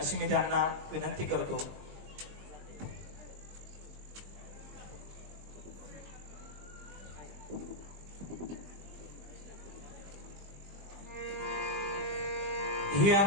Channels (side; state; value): left; late; 20 ms